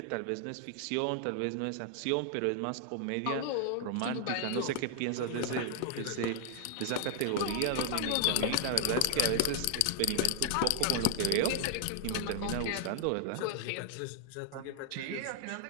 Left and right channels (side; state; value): both; different; correlation 0.00